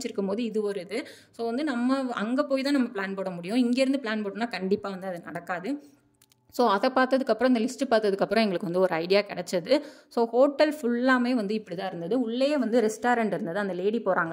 போது இது ஒரு இது. ஸோ வந்து நம்ம அங்கே போய் தான் நம்ம பிளான் போட முடியும். இங்கேருந்து பிளான் போட்டோம்னா கண்டிப்பாக வந்து அது நடக்காது. ஸோ அதை பார்த்ததுக்கப்புறம், இந்த லிஸ்ட்டு பார்த்ததுக்கப்புறம் எங்களுக்கு வந்து ஒரு ஐடியா கிடச்சது. ஸோ ஹோட்டல் ஃபுல்லாமே வந்து இப்படி தான் இருந்தது. உள்ளேயே வந்து ரெஸ்டாரண்ட் இருந்தது. அந்த லேடி போகிறாங்க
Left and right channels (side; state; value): both; identical; correlation 1.00